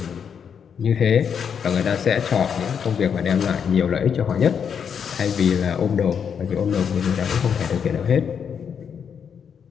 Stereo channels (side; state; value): right; quieter; 7.3 dB